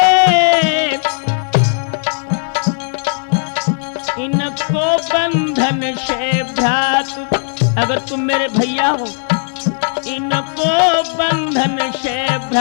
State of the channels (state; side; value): silent; right; 62 dB below the other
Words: बंधन से भ्रात अगर तुम मेरे भैया हो, इनको बंधन से